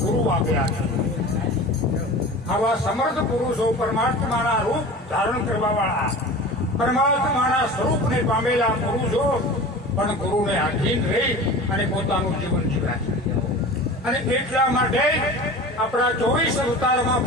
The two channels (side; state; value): both; normal; correlation 0.36